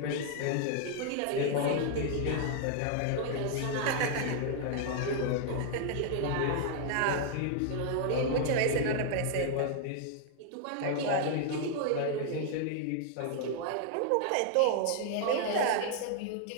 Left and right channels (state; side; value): different; both; correlation 0.00